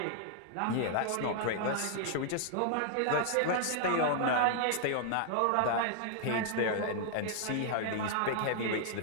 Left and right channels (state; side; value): different; both; correlation 0.00